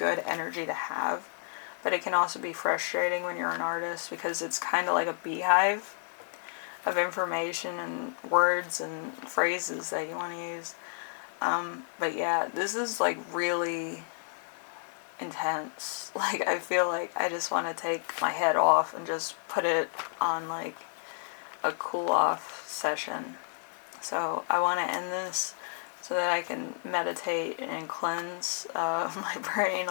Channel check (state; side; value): silent; right; 57 dB below the other